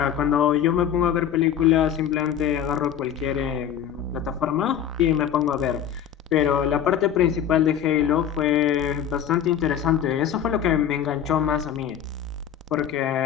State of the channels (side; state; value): right; quieter; 9.2 dB